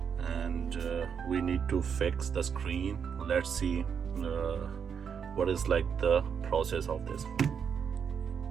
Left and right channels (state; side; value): quieter; left; 7.1 dB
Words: and we need to fix the screen. Let's see what is like the process of this.